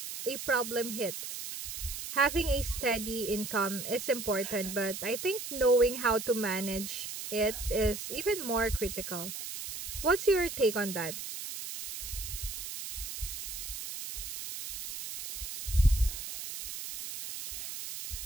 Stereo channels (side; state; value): right; noise; hiss, 7 dB below the sound